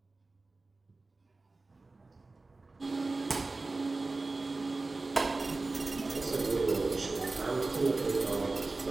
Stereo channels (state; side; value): quieter; left; 3.5 dB